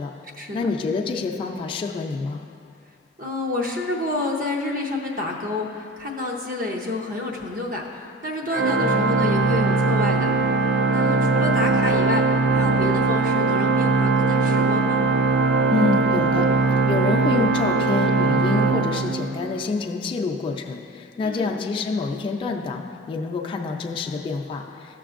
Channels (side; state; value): both; normal; correlation 0.35